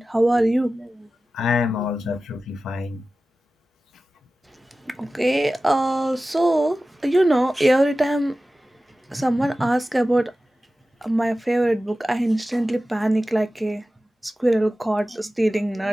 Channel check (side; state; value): both; normal; correlation 0.95